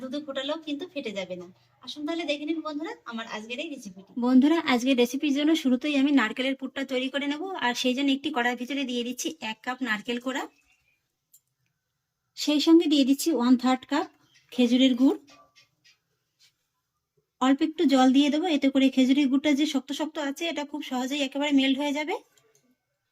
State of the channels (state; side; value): identical; both; correlation 1.00